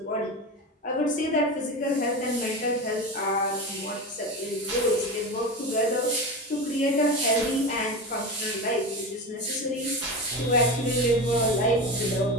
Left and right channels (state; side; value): normal; both; correlation 0.24